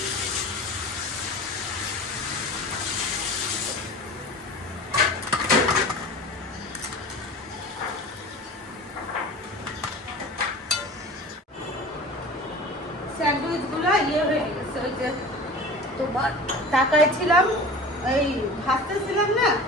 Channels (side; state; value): both; normal; correlation 0.37